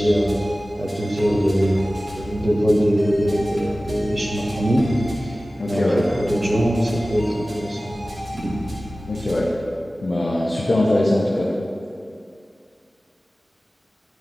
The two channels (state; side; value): normal; both; correlation 0.96